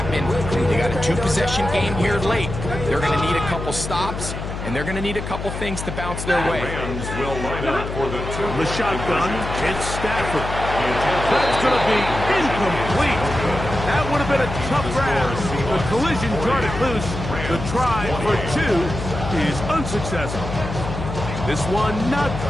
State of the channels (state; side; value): noise; left; hum, 6 dB below the sound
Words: They got a 2-possession game here late. They're going to need a couple stops, and they're going to need a couple things to bounce their way. Rams will line up for the shotgun, it's Stafford. That's going to be incomplete. That would have been a tough grab. The collision jarred it loose. The try for 2 is unsuccessful. This one not